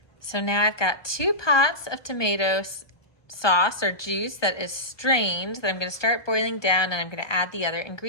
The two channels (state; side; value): late; right; 1.2 ms